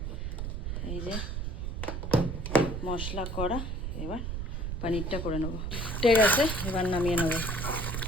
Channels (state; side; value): noise; right; rumble, 3 dB below the sound